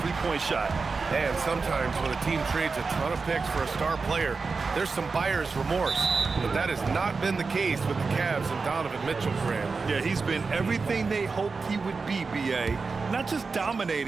three-point shot. And sometimes when a team trades a ton of picks for a star player, there's some buyer's remorse. But that has not been the case with the Cavs and Donovan Mitchell, Grant. Yeah, he's been everything they hoped he would be, BA. Not just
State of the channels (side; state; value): left; quieter; 4.5 dB